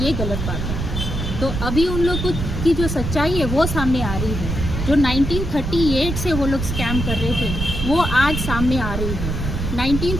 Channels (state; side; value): noise; right; rumble, 3 dB below the sound